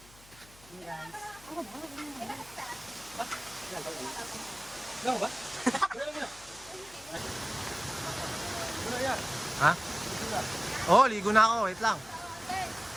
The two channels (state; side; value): noise; left; hum, 23 dB below the sound